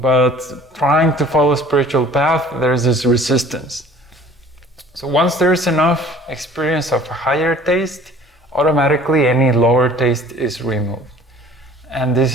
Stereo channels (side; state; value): both; normal; correlation 0.50